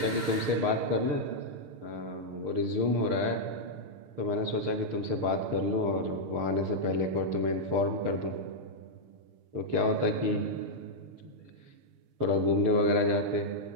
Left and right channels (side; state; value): left; late; 6.6 ms